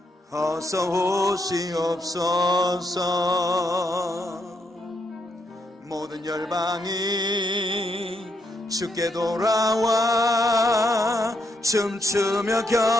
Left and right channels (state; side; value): normal; both; correlation 0.78